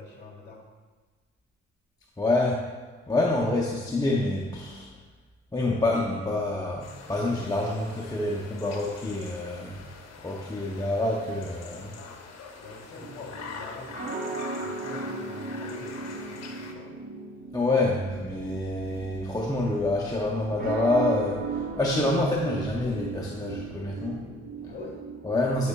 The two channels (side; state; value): both; normal; correlation 0.59